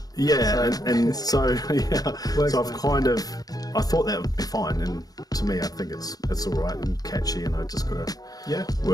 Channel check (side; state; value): right; late; 0.18 ms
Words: Yeah, so I thought that would be fine, and to me I think it's all right and catchy, and I just gotta